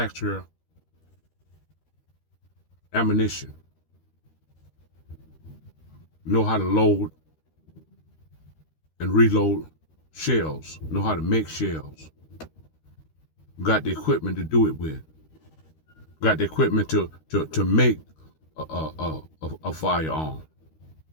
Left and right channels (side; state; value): right; late; 13 ms